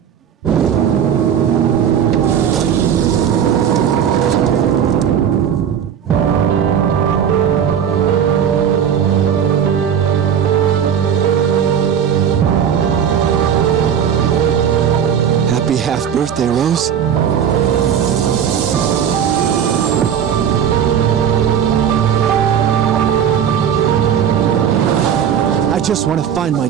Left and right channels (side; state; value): left; quieter; 8.4 dB